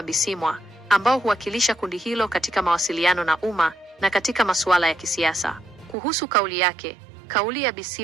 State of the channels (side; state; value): left; drops out; at 6.0 s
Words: Bisimwa ambao huwakilisha kundi hilo katika mawasiliano na umma na katika masuala ya kisiasa. Kuhusu kauli yake, kauli ya